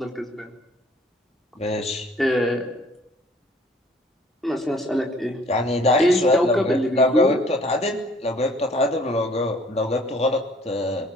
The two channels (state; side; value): normal; both; correlation 0.56